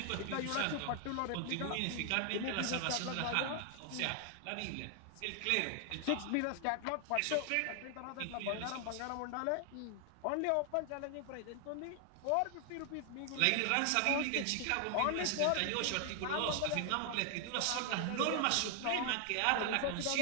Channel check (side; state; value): both; different; correlation 0.00